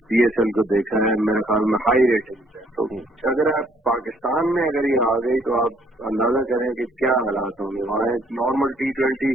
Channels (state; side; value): normal; both; correlation 0.64